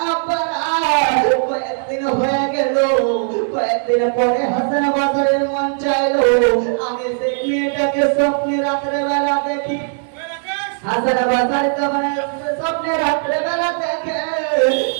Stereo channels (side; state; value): left; silent; digital silence